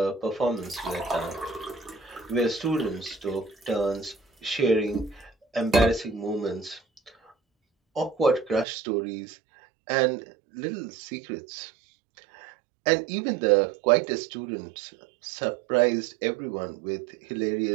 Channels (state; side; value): drops out; left; at 8.7 s